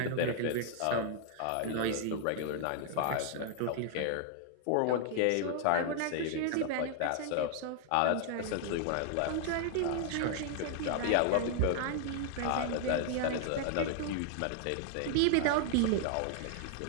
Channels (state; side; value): different; both; correlation -0.01